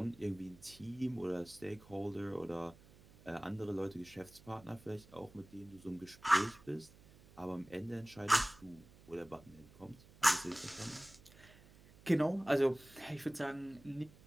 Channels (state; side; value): noise; right; hum, 23 dB below the sound